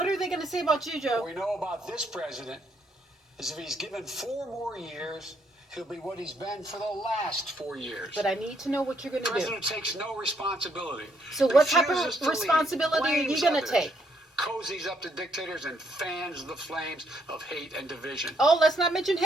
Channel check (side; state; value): both; normal; correlation 0.72